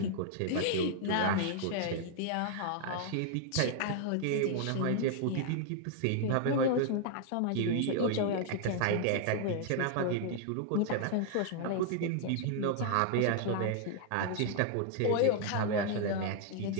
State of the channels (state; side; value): different; both; correlation 0.00